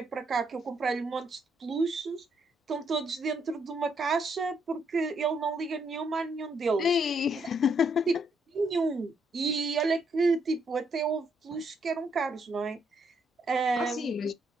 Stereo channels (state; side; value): normal; both; correlation 0.74